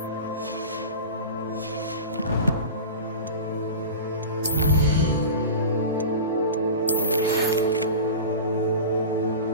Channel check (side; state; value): both; inverted; correlation -0.30